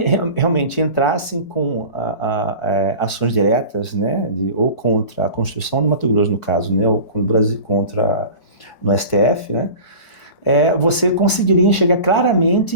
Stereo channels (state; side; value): late; right; 4.6 ms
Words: realmente entrassem com ações diretas, né, ou contra a Constituição do Mato Grosso, no caso, né, ou contra no STF, né, você conseguiria enxergar claramente